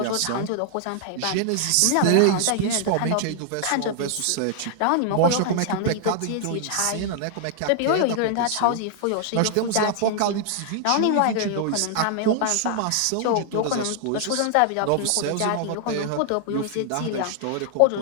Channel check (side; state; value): both; different; correlation 0.00